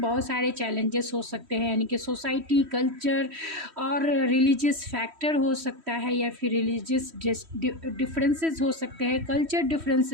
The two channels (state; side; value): late; left; 3.1 ms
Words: सारे चैलेंजेस हो सकते हैं, यानी कि सोसाइटी, कल्चर और रिलीजियस फैक्टर हो सकता है या फिर रिलीजियस डिफरेंसेस हो सकते हैं, कल्चर